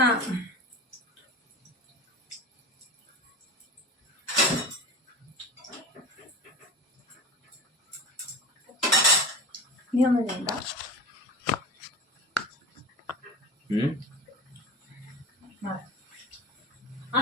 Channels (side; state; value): both; normal; correlation 0.31